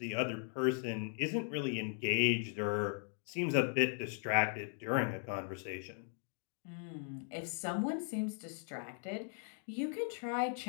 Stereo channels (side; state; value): right; silent; 52 dB below the other